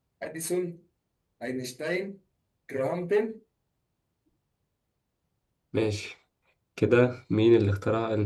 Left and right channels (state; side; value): identical; both; correlation 1.00